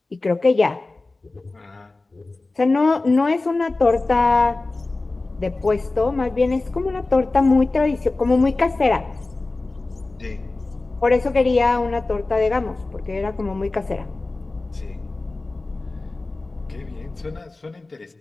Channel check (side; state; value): right; quieter; 3.3 dB